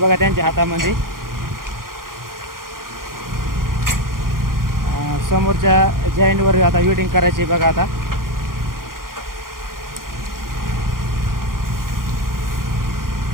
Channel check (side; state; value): left; late; 0.91 ms